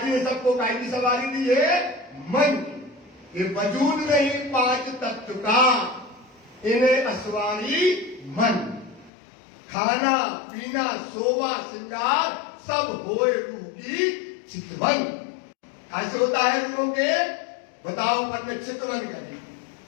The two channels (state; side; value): drops out; right; at 9.1 s